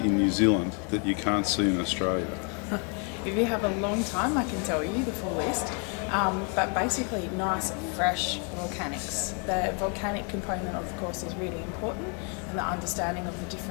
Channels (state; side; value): quieter; right; 37.4 dB